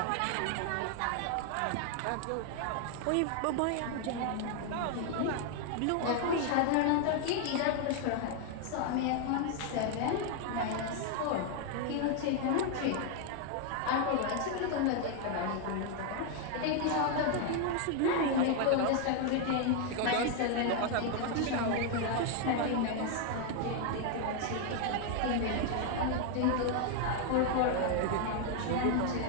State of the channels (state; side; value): different; both; correlation 0.00